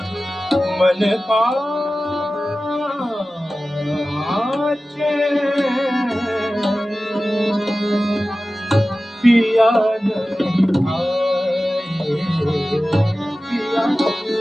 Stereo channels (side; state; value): both; normal; correlation 0.96